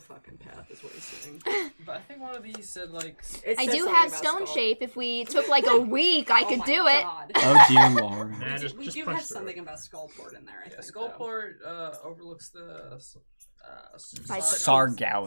path, is what he's saying. But I think one of these said, like... It I says do something have about stone skull. shape. If we took like a week, I could my do it. God. Oh dear lord. Nah, We just do punch have through something it. about Skullport in there, I Yeah, think. Skullport overlooks the...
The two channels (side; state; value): both; inverted; correlation -1.00